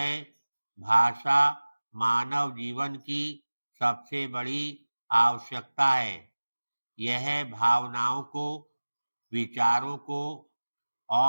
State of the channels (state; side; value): inverted; both; correlation -1.00